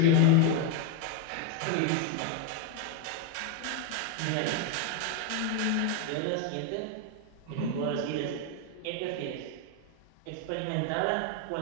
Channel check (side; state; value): both; different; correlation 0.02